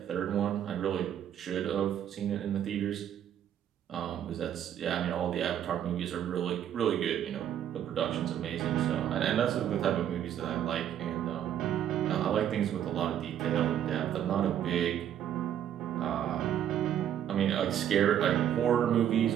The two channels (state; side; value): quieter; left; 10.2 dB